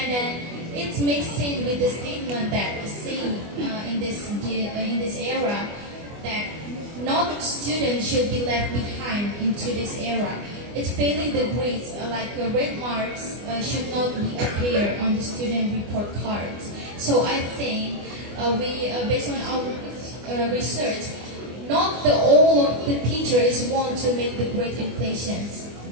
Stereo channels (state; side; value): late; left; 24 ms